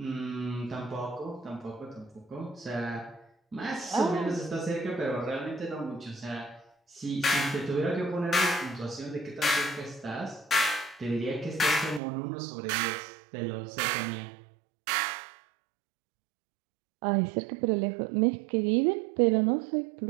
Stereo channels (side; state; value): left; drops out; at 12.0 s